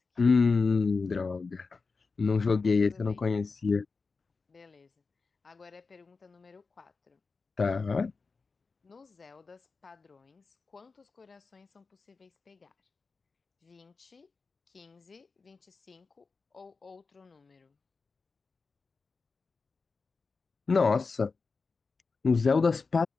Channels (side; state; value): right; quieter; 4.4 dB